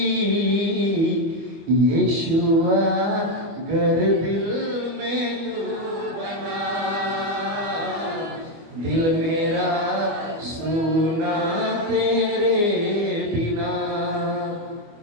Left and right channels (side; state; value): left; late; 25 ms